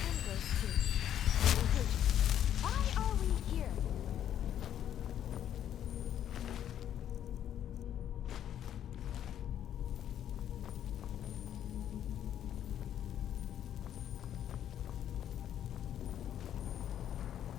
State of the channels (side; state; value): right; quieter; 10.4 dB